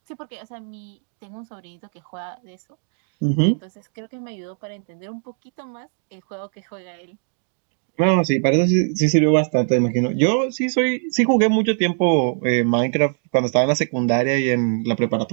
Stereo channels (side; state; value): left; silent; digital silence